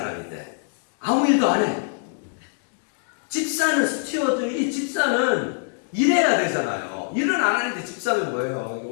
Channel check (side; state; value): right; silent; digital silence